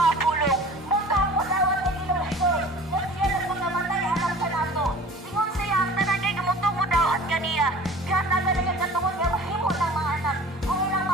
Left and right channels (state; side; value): normal; both; correlation 0.43